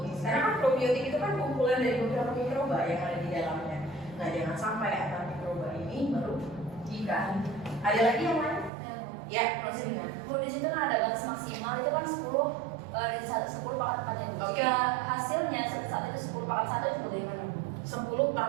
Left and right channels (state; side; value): drops out; left; at 8.7 s